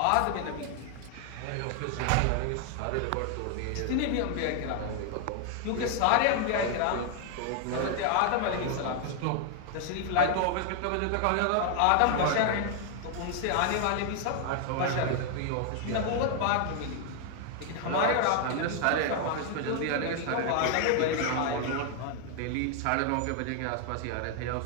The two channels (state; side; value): different; both; correlation 0.00